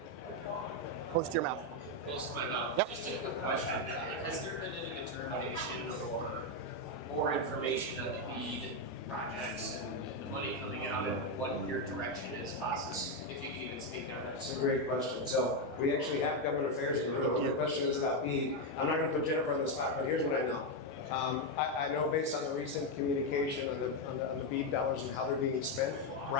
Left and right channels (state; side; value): normal; both; correlation 0.05